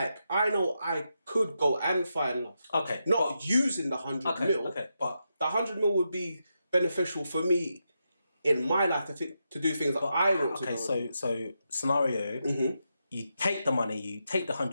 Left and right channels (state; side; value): inverted; both; correlation -0.85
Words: I know I could go and find love. Okay. Not using the 100 mil. Okay, but The 100 mil would be beneficial for me in my life to do things that I want to do. Okay, so scenario, you take the money, you take the